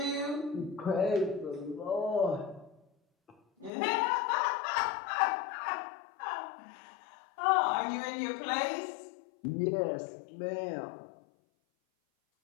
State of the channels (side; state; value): right; drops out; at 3.7 s